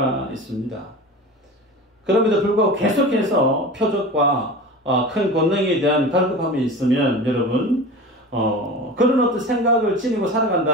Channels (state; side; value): normal; both; correlation 0.33